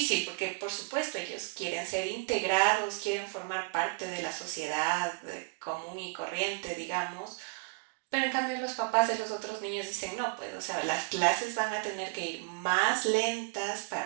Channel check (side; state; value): left; quieter; 30.8 dB